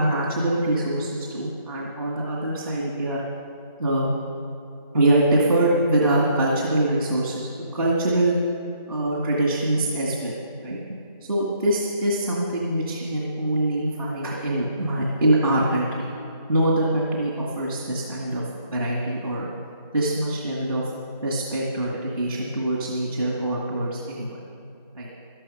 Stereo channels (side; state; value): both; inverted; correlation -0.68